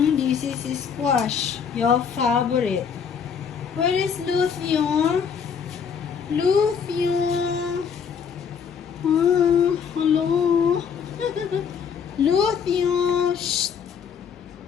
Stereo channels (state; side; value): quieter; right; 6.9 dB